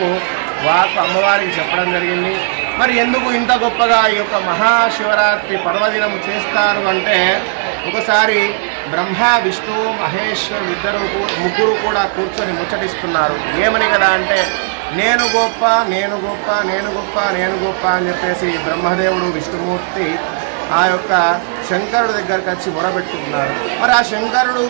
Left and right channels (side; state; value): left; silent; digital silence